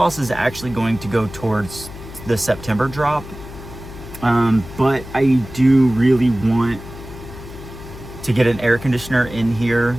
is actually going to go towards the September drop. But I do really want to get an air conditioner in here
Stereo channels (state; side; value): noise; left; hum, 14 dB below the sound